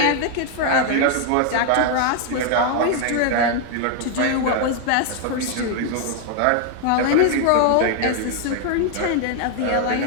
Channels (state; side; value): different; both; correlation 0.01